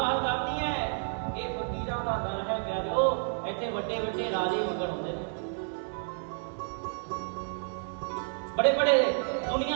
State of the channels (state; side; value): silent; left; digital silence